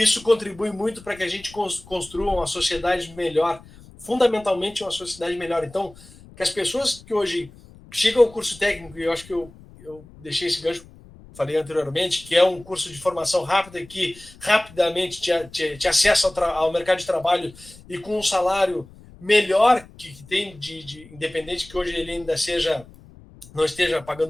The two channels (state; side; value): noise; left; rumble, 22 dB below the sound